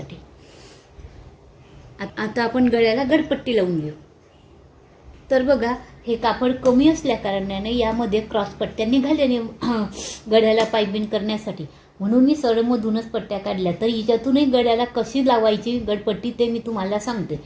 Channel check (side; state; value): both; identical; correlation 1.00